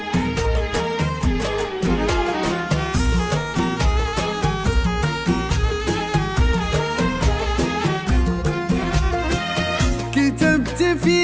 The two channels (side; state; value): both; identical; correlation 1.00